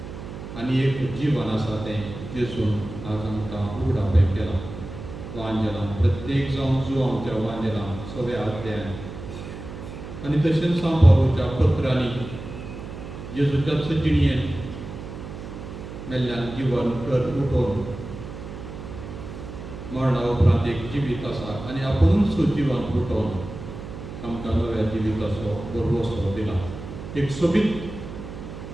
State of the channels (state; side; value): noise; right; hum, 11 dB below the sound